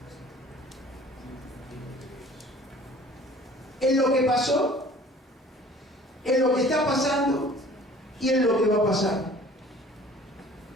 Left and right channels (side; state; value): both; normal; correlation 0.49